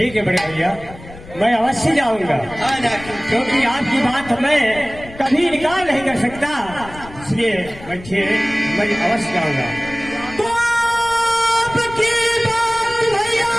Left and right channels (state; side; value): noise; left; rumble, 17 dB below the sound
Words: है बड़े भैया, मैं अवश्य जाऊंगा। हाँ नाक्सी, क्योंकि आपकी बात मैं कभी इनकार नहीं कर सकता, इसलिए मैं अवश्य जाऊंगा। तो आपकी बात भैया